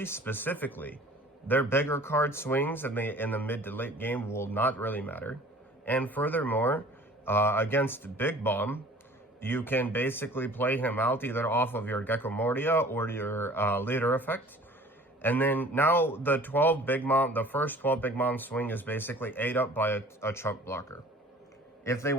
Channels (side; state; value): both; normal; correlation 0.48